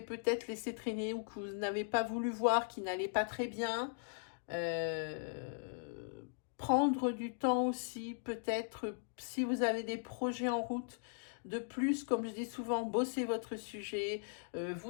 peut-être laissé traîner ou que vous n'avez pas voulu voir, qui n'allait pas très bien. Prendre du temps aussi, peut-être, si vous avez des projets en route, De plus, comme je dis souvent, bossez votre sujet,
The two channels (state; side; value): silent; right; digital silence